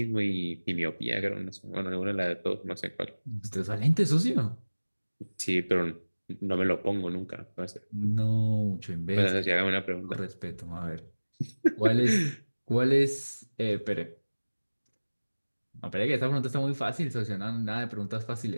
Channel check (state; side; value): inverted; both; correlation -1.00